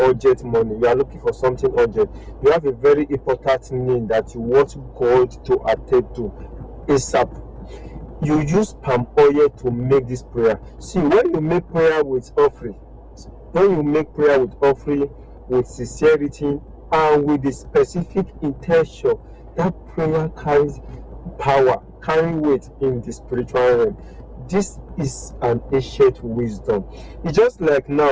money, you are looking for something urgent, you have a very important need that you want God to attend to ASAP, you use palm oil to make this prayer. See, when you make prayer with offering, with sincerity and with the specific intention, that prayer carries power, carry weight in the spiritual realm. This is an ancient wisdom. It's just like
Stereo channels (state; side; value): identical; both; correlation 1.00